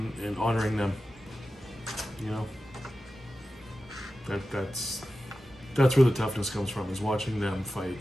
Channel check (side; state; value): both; normal; correlation 0.93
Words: honoring them. You know, that's where the toughness comes from, is watching them fight.